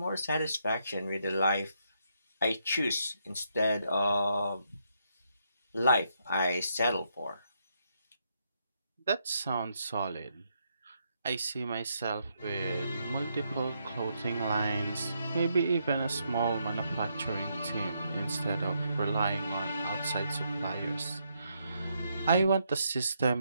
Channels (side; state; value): both; inverted; correlation -0.77